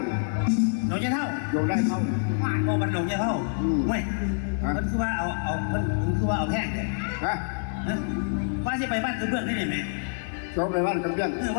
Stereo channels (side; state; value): right; silent; 60 dB below the other